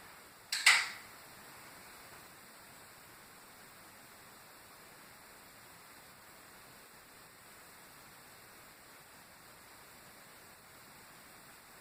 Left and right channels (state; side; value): identical; both; correlation 1.00